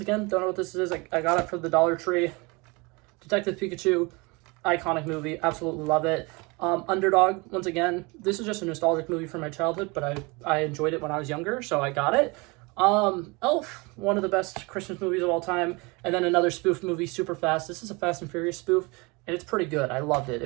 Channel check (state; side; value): quieter; left; 26.9 dB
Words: again, don't know what this is. I got it for the Dollar Tree. Detective Pikachu, iconic movie. Absolutely love it. Underdog, once again, this is just a nostalgic movie from my childhood, but I enjoyed it when I was younger, so I got it. Elf, one of the best Christmas movies of all time. And then another spoof movie, Super Fast. This is a Fast and Furious spoof, and it's pretty good. I loved it.